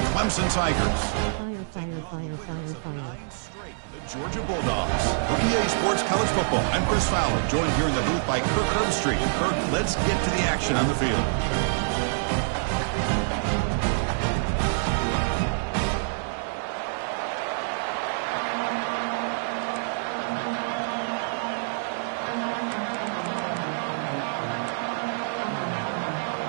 Clemson Tigers. Georgia Bulldogs. For EA Sports College Football, I'm Chris Fowler, joined here in the booth by Kirk Herbstreit. Kirk, let's get to the action on the field.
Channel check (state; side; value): silent; left; digital silence